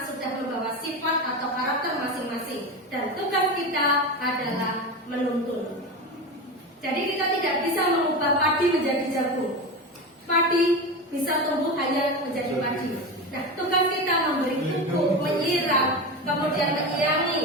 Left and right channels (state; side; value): normal; both; correlation 0.22